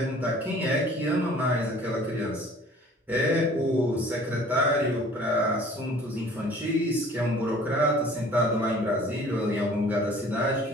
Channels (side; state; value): both; normal; correlation 0.50